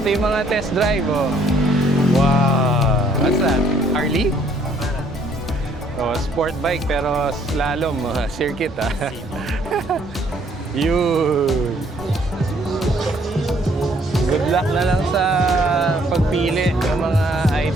yung mga test drive, oh. Wow! What's that? Harley? Oh, sport bike pero slalom, circuit, ah. Yun! Good luck na lang sa pagpili ng mga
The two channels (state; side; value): normal; both; correlation 0.63